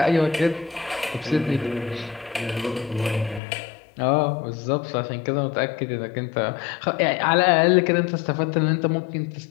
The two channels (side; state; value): right; drops out; at 3.4 s